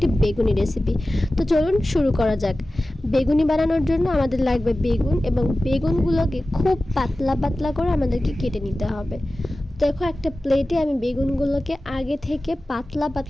বেগুনি রেসিপি। তো চলুন শুরু করা যাক। বেগুনি বানানোর জন্য আমাদের লাগবে বেগুন, এবং বেগুনগুলোকে খুব পাতলা পাতলা করে আমাদেরকে কেটে নিতে হবে। দেখো, একটা প্লেটে আমি বেগুনগুলোকে আগে থেকে পাতলা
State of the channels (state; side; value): normal; both; correlation 0.96